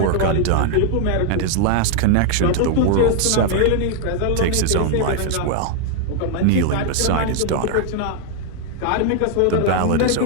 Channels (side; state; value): both; different; correlation 0.00